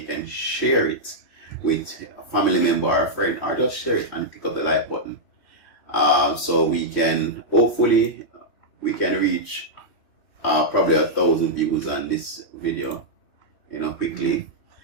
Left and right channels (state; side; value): late; right; 3.1 ms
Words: can share it with a family member or a friend, or just share it and click up the like button. So we can hopefully reach probably 1,000 views on this video, quickly,